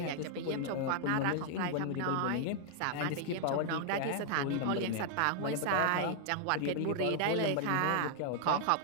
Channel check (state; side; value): different; both; correlation 0.00